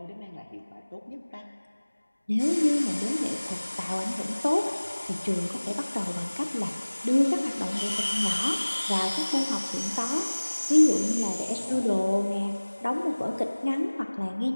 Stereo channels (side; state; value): both; inverted; correlation -1.00